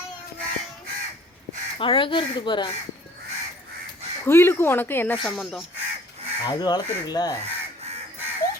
அழகா இருக்குது பாரு. குயிலுக்கும் உனக்கு என்ன சம்பந்தம்? அது வளர்த்துருக்குல்ல,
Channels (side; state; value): both; normal; correlation 0.54